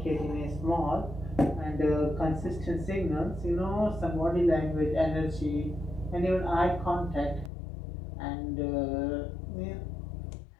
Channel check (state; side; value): drops out; right; at 7.5 s